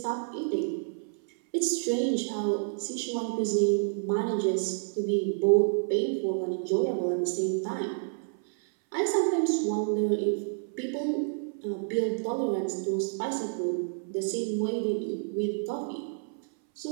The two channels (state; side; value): silent; left; 58 dB below the other